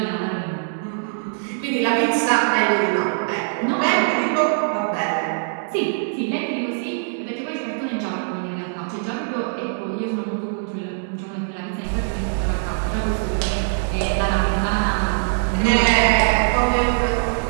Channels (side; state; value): left; silent; 64 dB below the other